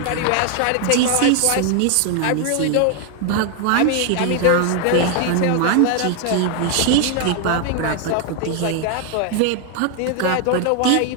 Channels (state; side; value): different; both; correlation 0.00